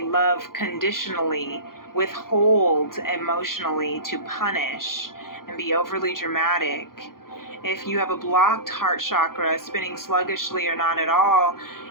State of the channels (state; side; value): late; right; 0.92 ms